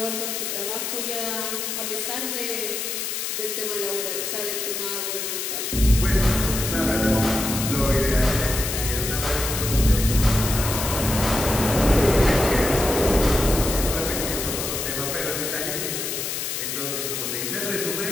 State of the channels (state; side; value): noise; left; hiss, 3 dB below the sound